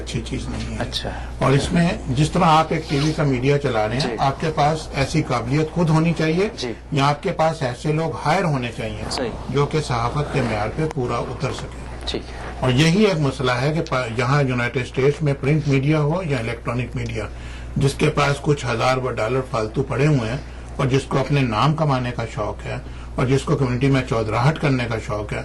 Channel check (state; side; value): identical; both; correlation 1.00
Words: چیز نہیں ہے. اچھا. اور اس میں جس طرح آپ ایک ٹی وی کا میڈیا چلا رہے ہیں، آپ کے پاس ایسی قابلیت خود ہونی چاہیے یا آپ کے پاس ایسے لوگ ہائر ہونے چاہیے جو کہ صحافت کے معیار پہ پورا اتر سکے. اور یہی ایک مسئلہ ہے کہ یہاں یونائٹڈ اسٹیٹس میں پرنٹ میڈیا ہو یا الیکٹرانک میڈیا، جس کے پاس کچھ ہزار $1 فالتو پڑے ہوئے ہیں اور جس کو اپنے نام کمانے کا شوق ہے اور جس کو کمیونٹی میں چودراہٹ کرنے کا شوق ہے،